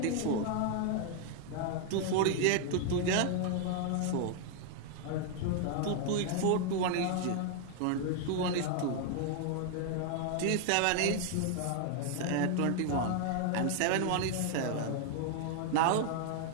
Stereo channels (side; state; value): both; different; correlation 0.00